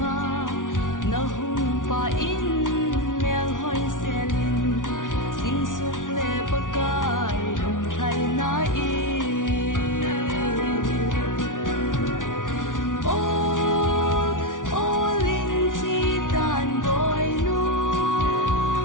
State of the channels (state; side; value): late; right; 0.88 ms